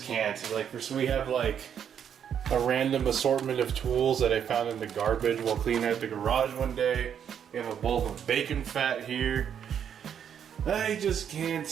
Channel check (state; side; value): quieter; left; 8.5 dB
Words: can't. Like, we have like a random assortment of tools that I found in the garbage while cleaning out the garage one day. We have a bowl of bacon fat here. I just